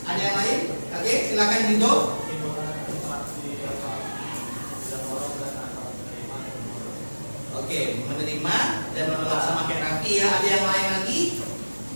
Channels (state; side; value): inverted; both; correlation -1.00